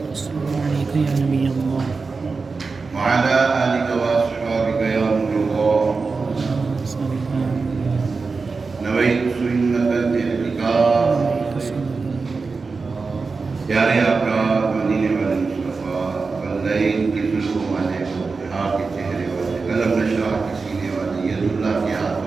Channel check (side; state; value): left; quieter; 4.4 dB